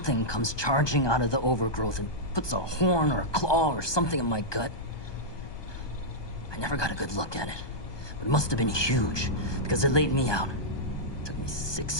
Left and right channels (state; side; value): late; right; 1.2 ms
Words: comes charging out of the overgrowth and puts a horn or a claw or something in my gut. I never got a good look at it, but it must have been huge because it laid me out. It took me